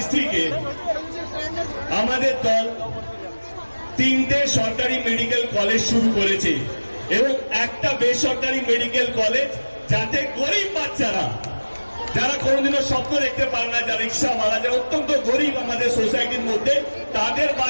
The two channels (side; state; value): both; inverted; correlation -1.00